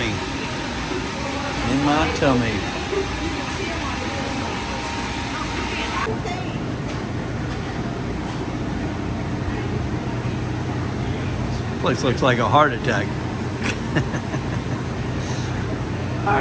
In my tummy. Place looks like a heart attack.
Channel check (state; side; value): identical; both; correlation 1.00